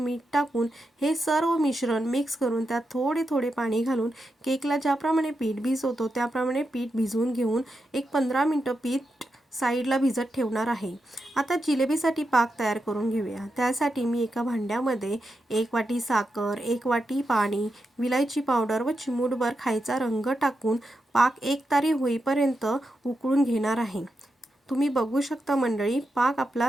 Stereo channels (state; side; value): normal; both; correlation 0.87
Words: टाकून हे सर्व मिश्रण मिक्स करून त्यात थोडे थोडे पाणी घालून केकला ज्याप्रमाणे पीठ भिजवतो त्याप्रमाणे पीठ भिजवून घेऊन एक 15 मिनिटं पीठ साईडला भिजत ठेवणार आहे। आता जिलेबीसाठी पाक तयार करून घेऊया। त्यासाठी मी एका भांड्यामध्ये 1 वाटी साखर, 1 वाटी पाणी, विलायची पावडर व चिमूटभर खायचा रंग टाकून पाक एकतारी होईपर्यंत उकळून घेणार आहे। तुम्ही बघू शकता मंडळी, पाक